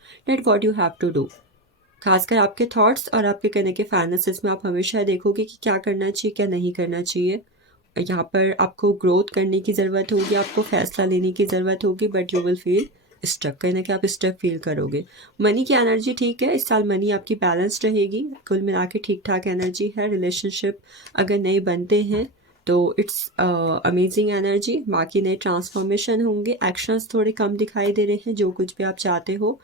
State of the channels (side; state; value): both; normal; correlation 0.20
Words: that what you have to do. खासकर आपके थॉट्स और आपके कहने के फाइनेंसेस में आप हमेशा देखोगे कि क्या करना चाहिए, क्या नहीं करना चाहिए। यहाँ पर आपको ग्रोथ करने की ज़रूरत होगी, आपको फैसला लेने की ज़रूरत होगी, but you will feel stuck, कहीं ना कहीं आप स्टक फील करोगे। मनी की एनर्जी ठीक है, इस साल मनी आपकी बैलेंस्ड रहेगी, कुल मिला के ठीक ठाक एनर्जी है। रिलेशनशिप अगर नए बनते हैं तो इट्स अमेजिंग एनर्जी। बाकी नए ट्रांसफॉर्मेशन होंगे, एक्शंस थोड़े कम दिखाई दे रहे हैं जो कुछ भी आप चाहते हो